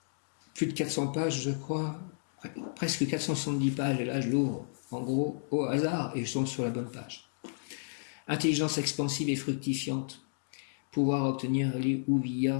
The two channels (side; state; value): right; silent; digital silence